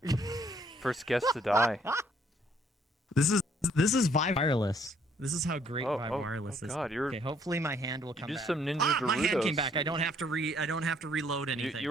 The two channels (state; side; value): normal; both; correlation 0.65